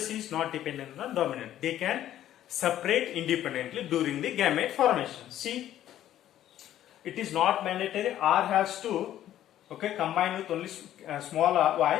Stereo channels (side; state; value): right; quieter; 12.2 dB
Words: is not dependent on dominant. They can separate independently during the gamete formation. See, it is not mandatory. R has to combine with only small